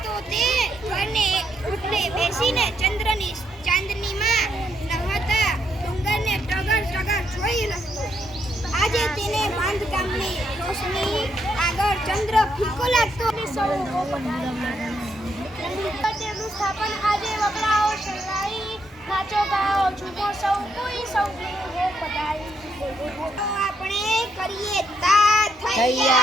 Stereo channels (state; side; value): normal; both; correlation 0.76